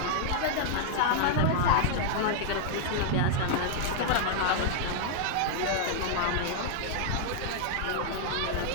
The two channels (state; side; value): different; both; correlation -0.01